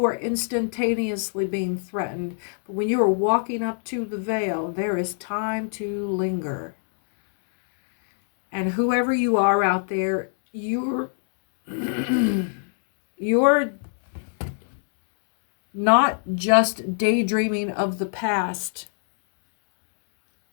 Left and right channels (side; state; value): right; silent; digital silence